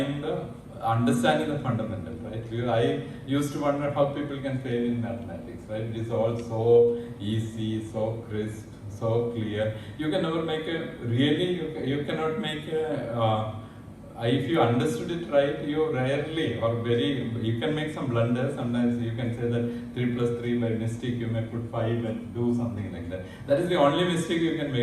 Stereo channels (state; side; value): identical; both; correlation 1.00